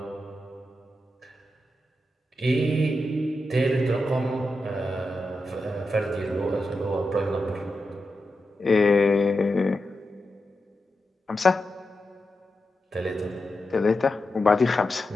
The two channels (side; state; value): both; normal; correlation 0.89